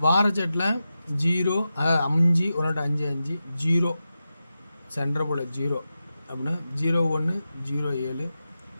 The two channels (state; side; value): inverted; both; correlation -0.91